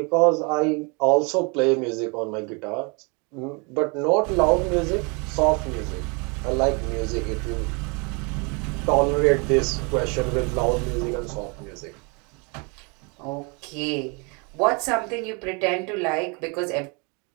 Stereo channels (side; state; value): left; quieter; 32.0 dB